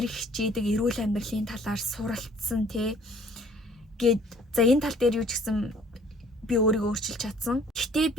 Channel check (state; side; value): normal; both; correlation 0.56